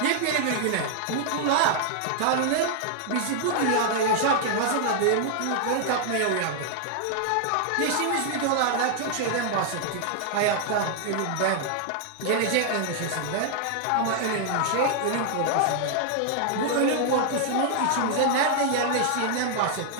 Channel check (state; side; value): different; both; correlation 0.00